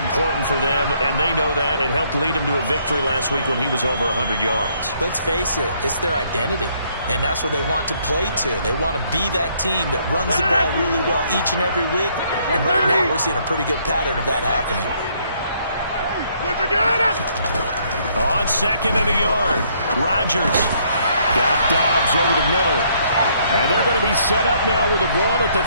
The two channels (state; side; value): inverted; both; correlation -0.67